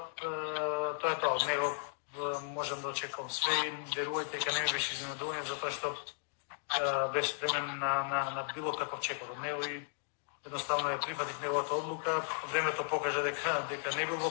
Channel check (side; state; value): right; silent; digital silence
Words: тоа е тоа. Од него можам да очекувам све и верувајте дека не ми беше изненадување за тоа што беше спремен на било каков чекор од него и едноставно ја прифатих неговата одлука. Времето покажа дека не бил во